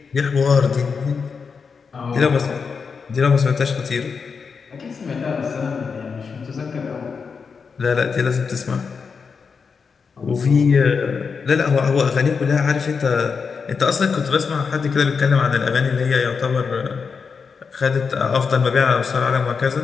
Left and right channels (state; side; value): quieter; right; 5.5 dB